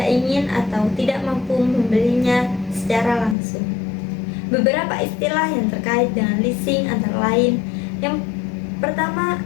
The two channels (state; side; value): drops out; right; at 3.4 s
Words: ingin atau tidak mampu membelinya secara langsung. Beberapa istilah yang terkait dengan leasing antara lain: yang pertama